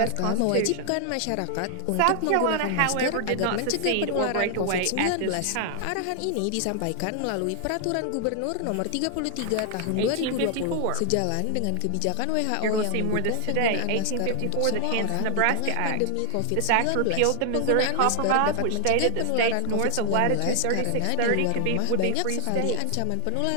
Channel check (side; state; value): both; different; correlation 0.00